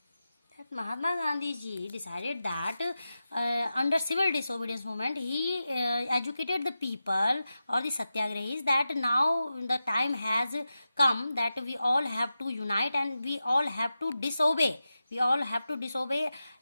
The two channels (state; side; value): inverted; both; correlation -0.92